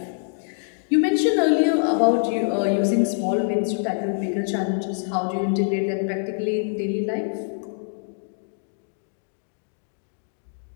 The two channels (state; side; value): silent; right; digital silence